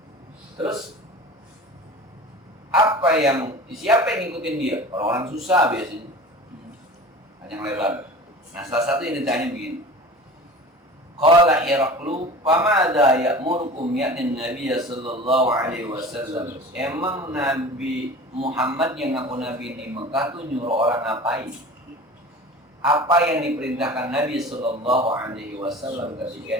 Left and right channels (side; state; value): both; normal; correlation 0.38